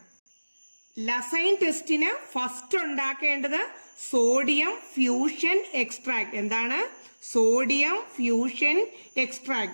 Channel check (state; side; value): inverted; both; correlation -1.00